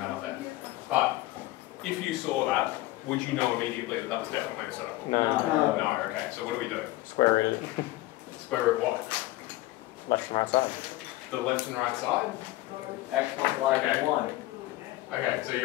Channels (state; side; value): quieter; right; 17.9 dB